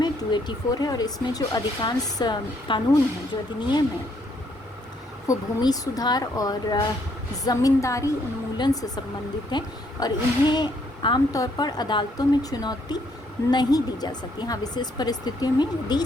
हैं? 284 है। और इसमें जो अधिकांश कानून हैं, जो अधिनियम हैं, वो भूमि सुधार और ज़मींदारी उन्मूलन से संबंधित हैं और इन्हें आमतौर पर अदालतों में चुनौती नहीं दी जा सकती। हाँ, विशेष परिस्थितियों में यदि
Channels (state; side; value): normal; both; correlation 0.69